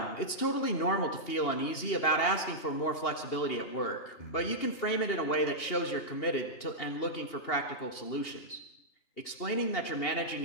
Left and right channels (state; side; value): late; right; 2.8 ms